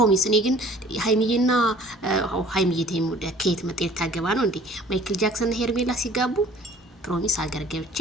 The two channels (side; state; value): both; normal; correlation 0.52